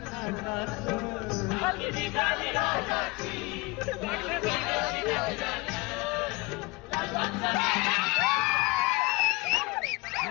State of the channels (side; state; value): right; quieter; 23.9 dB